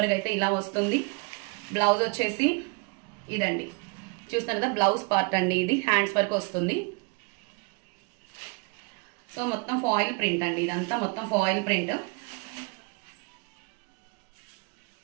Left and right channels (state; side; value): quieter; left; 32.8 dB